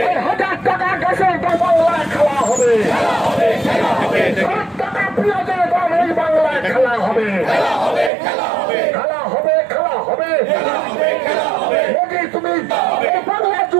1000 টাকা গ্যাসের দাম বাংলায় খেলা হবে 7 টাকা পেঁয়াজের দাম এই বাংলায় খেলা হবে মোদি তুমি এই বাংলা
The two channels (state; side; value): drops out; left; at 8.1 s